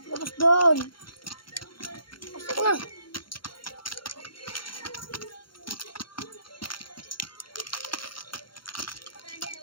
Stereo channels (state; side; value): late; right; 0.73 ms